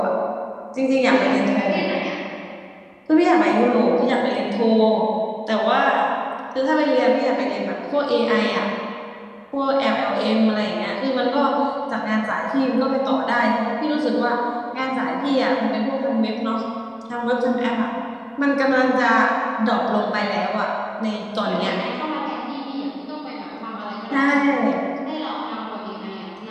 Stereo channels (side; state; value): both; identical; correlation 1.00